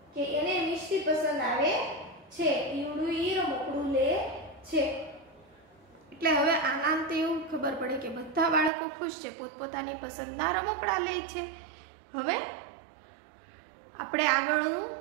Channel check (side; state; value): left; drops out; at 8.7 s